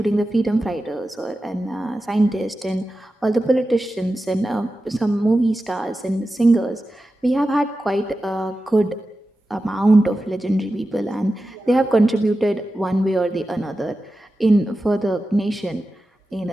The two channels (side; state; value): both; normal; correlation 0.93